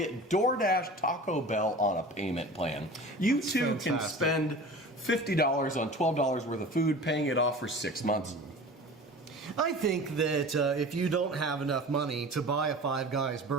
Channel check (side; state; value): both; normal; correlation 0.38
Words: DoorDash Taco Bell on a payment plan. You That's too can fantastic. spend $50 on $12 worth of food, paying it off for 6 months. I think that if you don't have enough money to buy a Five Guys